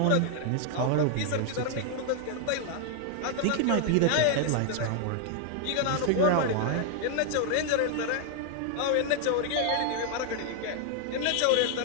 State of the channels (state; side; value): different; both; correlation 0.00